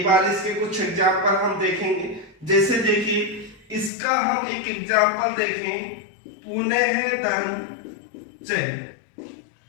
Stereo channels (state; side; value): drops out; right; at 3.9 s